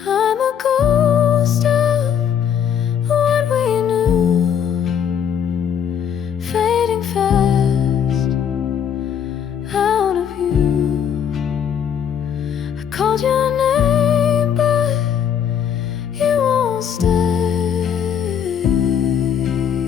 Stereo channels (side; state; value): right; quieter; 8.3 dB